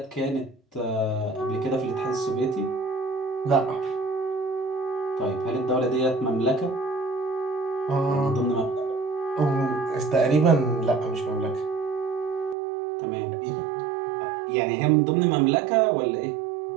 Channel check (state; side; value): drops out; left; at 12.6 s